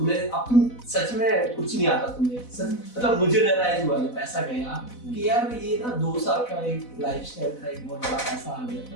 सच में कुछ नहीं आता तुम्हें। मतलब मुझे रियलाइज हुआ जब पैसा गया कि यार ये ना 2 साल का एक लाइफस्टाइल था, एक बहुत बड़ा पैसा आ गया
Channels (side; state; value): right; late; 4.0 ms